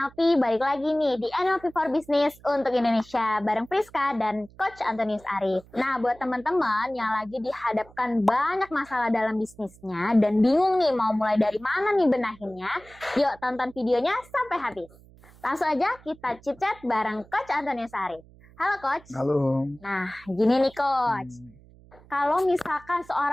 balik lagi nih di NLP for Business untuk Indonesia bareng Priska dan Coach Antonius Arif. Nah, buat teman-teman yang lagi dihadapkan banyak masalah dalam bisnisnya dan bingung nih mau mulai dari mana nih benahinnya, yuk tonton videonya sampai habis. Langsung aja kita chit-chat bareng Coach Antonius Arif. Halo Coach. Halo. Nah, gini nih Coach. Kalau misalkan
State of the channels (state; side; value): noise; right; hum, 25 dB below the sound